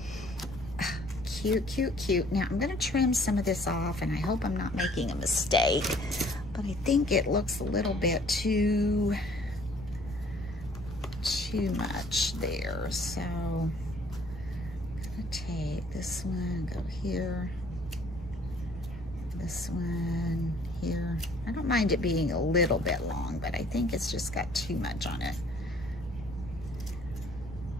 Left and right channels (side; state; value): left; noise; rumble, 14 dB below the sound